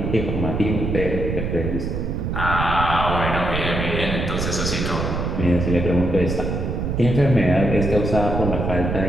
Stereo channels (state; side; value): noise; right; rumble, 2 dB below the sound